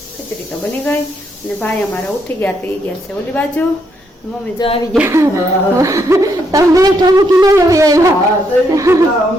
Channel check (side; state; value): both; normal; correlation 0.76